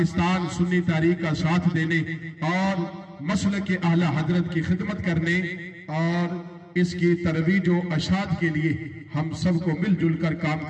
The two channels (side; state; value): both; identical; correlation 1.00